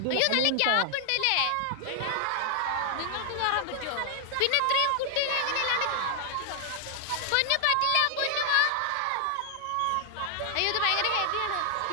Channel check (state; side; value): different; both; correlation 0.00